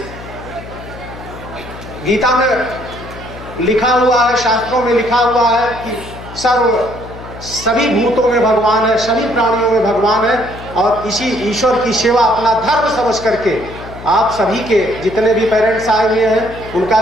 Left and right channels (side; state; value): left; noise; hum, 14 dB below the sound